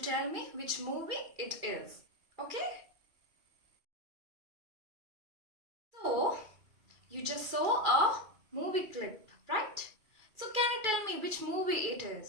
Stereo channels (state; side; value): late; left; 2.4 ms